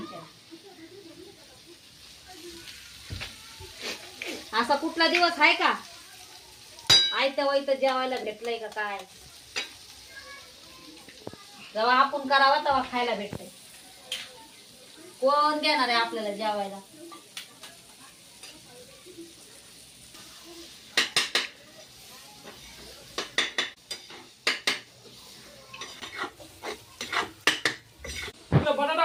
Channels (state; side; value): identical; both; correlation 1.00